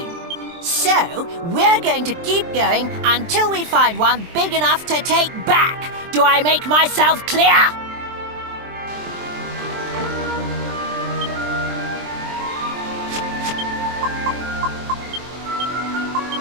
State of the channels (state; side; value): late; left; 23 ms